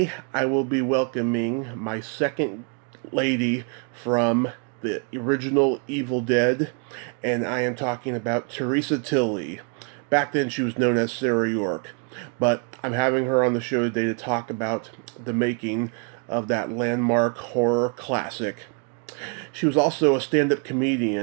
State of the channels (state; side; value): quieter; left; 39.2 dB